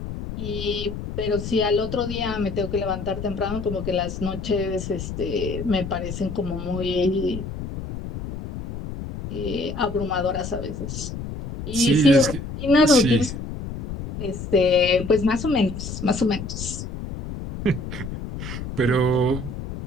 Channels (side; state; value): left; noise; rumble, 8 dB below the sound